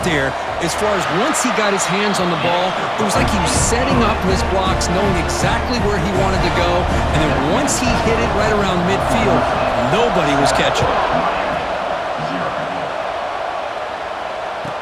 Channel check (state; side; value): identical; both; correlation 1.00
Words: there. As far as once he got his hands on the ball, it was like he was setting up his blocks, knowing exactly where he wanted to go. And then once he hit it right around midfield, nobody was catching it.